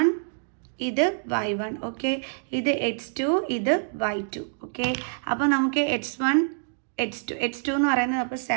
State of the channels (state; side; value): silent; left; digital silence